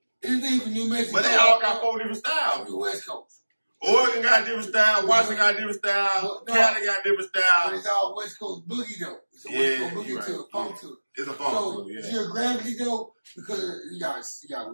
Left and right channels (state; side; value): inverted; both; correlation -1.00